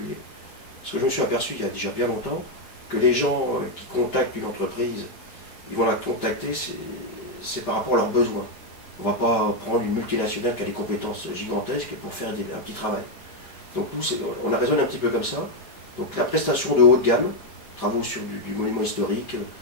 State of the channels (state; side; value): late; right; 5.3 ms